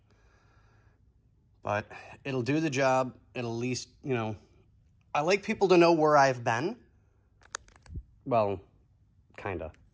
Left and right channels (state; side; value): identical; both; correlation 1.00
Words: But it'll do the job. It'll at least, you know, I like people to know where I've been. Well, kinda.